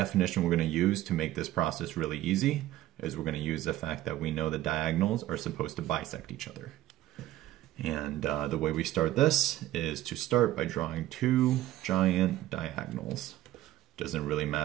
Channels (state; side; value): quieter; left; 14.7 dB